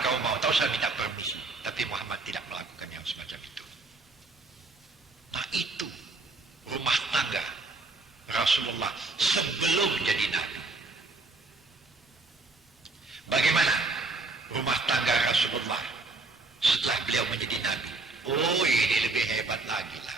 kau mau, tahu saya minta permisi. Tapi Muhammad tidak melakukan yang semacam itu. Nah itu rumah tangga Rasulullah sebelum jadi Nabi. Bagaimana rumah tangga Rasulullah setelah beliau menjadi Nabi? Oh, ini lebih hebat lagi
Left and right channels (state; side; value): quieter; left; 3.4 dB